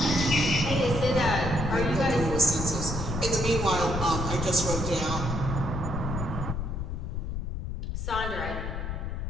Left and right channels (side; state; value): left; noise; rumble, 4 dB below the sound